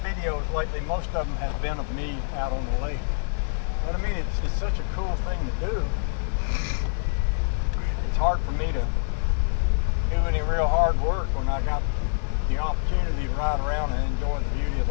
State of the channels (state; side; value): silent; right; 61 dB below the other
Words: videos lately, most of them have been of me out on the lake. But I mean, it's such a cool thing to do. It's hard for me to do any real hard work when I got the opportunity to ride around and enjoy the beauty of